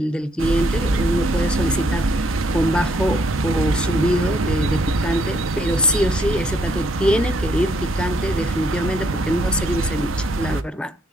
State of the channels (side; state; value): both; normal; correlation 0.71